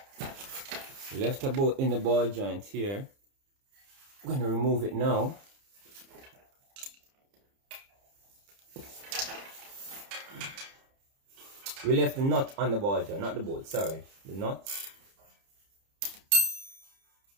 we left a bolt in the ball joint here. I'm going to remove it now. We left the nut on the ball joint, not the bolt, sorry. The nut.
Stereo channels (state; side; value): late; left; 30 ms